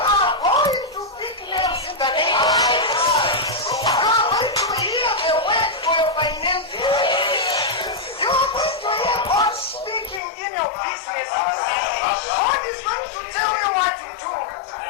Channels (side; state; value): right; drops out; at 10.2 s